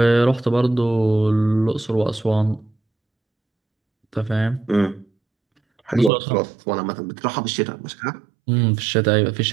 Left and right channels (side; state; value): left; drops out; at 6.1 s